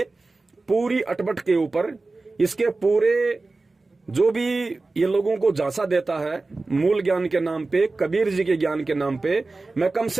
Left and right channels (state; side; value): quieter; left; 3.5 dB